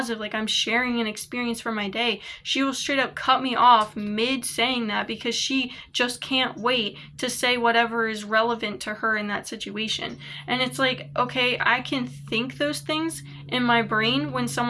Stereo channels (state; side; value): identical; both; correlation 1.00